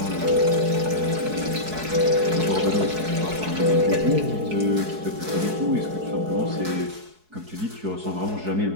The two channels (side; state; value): left; late; 4.7 ms